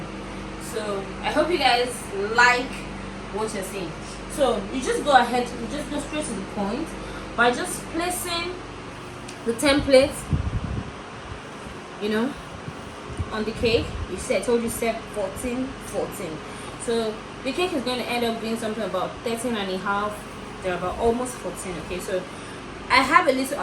So I hope you guys like what you're seeing. So you just go ahead, you just go straight to the point by just placing the template, you know, on the cake. You said, I told you set 14. So the cake is going to end up being something about 13 and a half. They're about almost 14. Okay, so I have a little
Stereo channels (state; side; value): identical; both; correlation 1.00